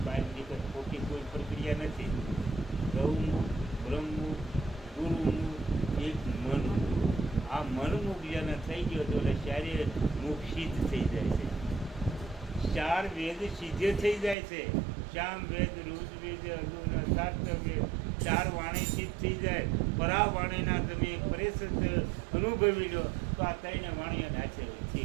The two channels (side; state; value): left; drops out; at 14.4 s